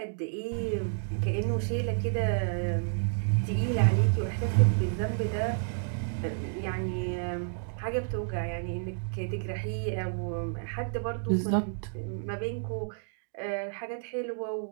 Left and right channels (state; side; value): silent; left; digital silence